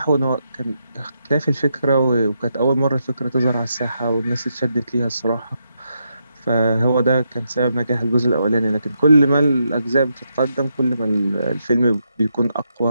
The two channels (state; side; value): inverted; both; correlation -0.82